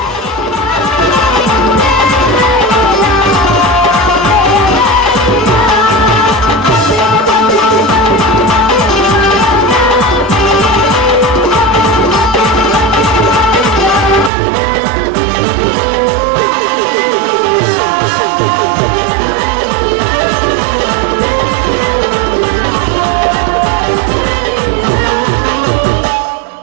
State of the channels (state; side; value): drops out; left; at 14.3 s